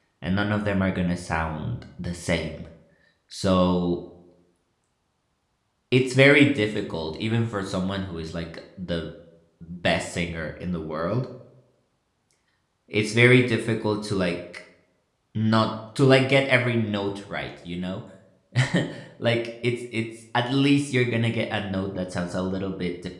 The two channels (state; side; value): identical; both; correlation 1.00